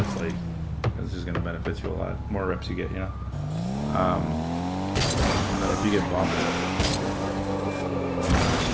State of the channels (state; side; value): identical; both; correlation 1.00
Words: like it's just gonna benefit you a lot. More reps you get, you know. And then if you get bumped, just